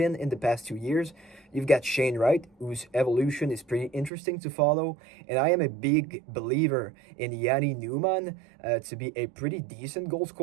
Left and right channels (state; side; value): drops out; left; at 4.1 s